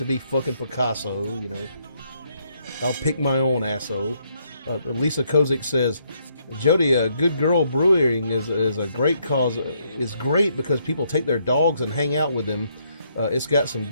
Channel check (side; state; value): both; inverted; correlation -0.73